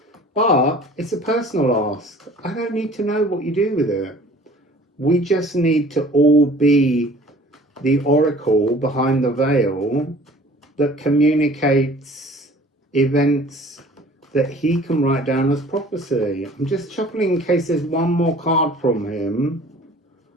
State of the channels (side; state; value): both; normal; correlation 0.49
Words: but it's a personal ask. I don't need to know what you do with it. We just need to all be the oracle behind the veil that communicates events that he can write down as prophecy. I'm just shuffling in case there's one more card from him.